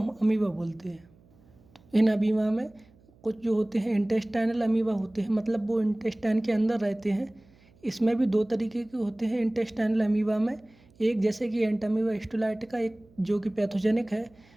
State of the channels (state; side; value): noise; right; hum, 29 dB below the sound